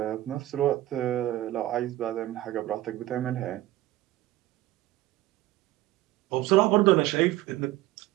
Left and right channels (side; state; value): left; quieter; 15.9 dB